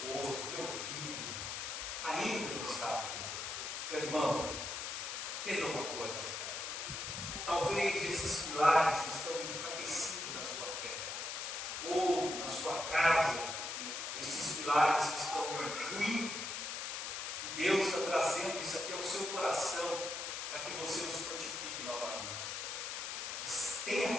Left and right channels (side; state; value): left; noise; hiss, 4 dB below the sound